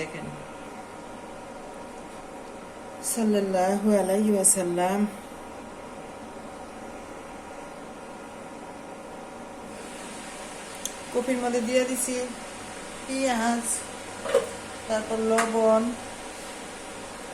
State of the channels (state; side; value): identical; both; correlation 1.00